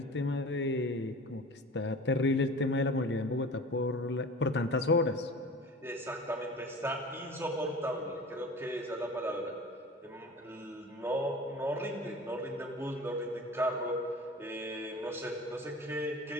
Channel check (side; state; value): both; normal; correlation 0.38